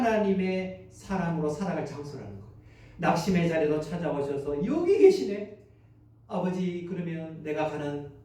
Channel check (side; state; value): both; identical; correlation 1.00